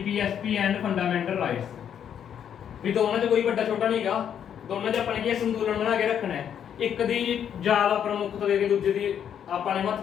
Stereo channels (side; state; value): right; quieter; 8.9 dB